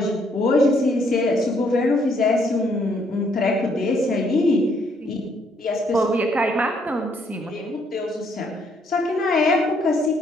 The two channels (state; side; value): normal; both; correlation 0.69